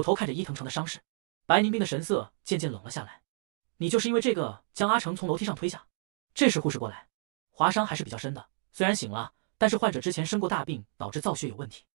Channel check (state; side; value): silent; left; digital silence